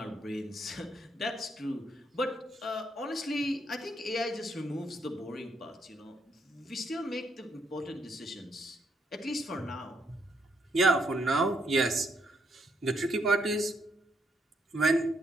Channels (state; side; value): normal; both; correlation 0.74